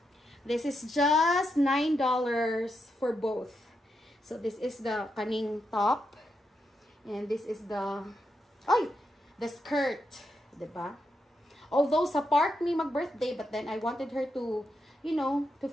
This is just $9 for both. So, this is the kaning top. And this is the, the skirt. Diba? Although, sa park ni mag-birthday, but then I wanted her to, you know, to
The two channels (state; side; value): normal; both; correlation 0.84